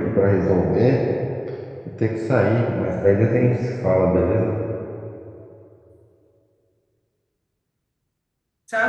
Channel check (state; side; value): identical; both; correlation 1.00